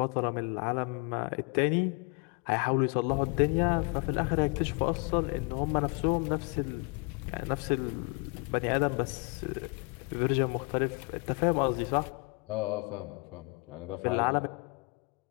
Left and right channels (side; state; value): right; quieter; 31.7 dB